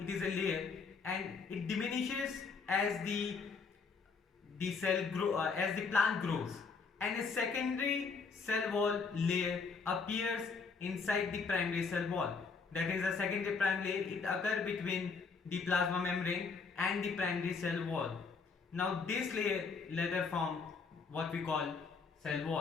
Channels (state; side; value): quieter; right; 4.9 dB